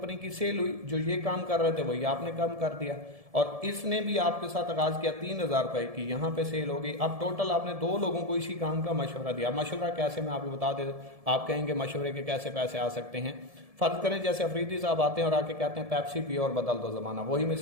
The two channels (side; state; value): left; late; 1.7 ms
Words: की सेल हुई, जो ये काम कर रहे थे वही आपने कम कर दिया और इसने भी आपके साथ आगाज किया 3000 रुपए की, यहाँ पे सेल हो गई। अब टोटल आपने 2 लोगों को इसी काम का मशवरा दिया। मशवरा कैसे, मैं आपको बता दे, आप कहेंगे मशवरे के कैसे पैसे आ सकते हैं। फर्ज करें जैसे अफरीदी साहब आते हैं और आके कहते हैं पेप्सी पियो और बदल दो जमाना। वही